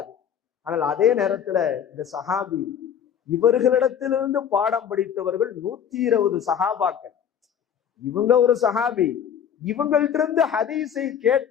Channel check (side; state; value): right; quieter; 8.4 dB